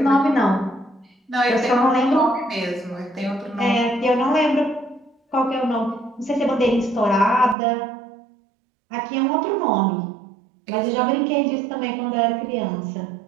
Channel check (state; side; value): drops out; left; at 7.6 s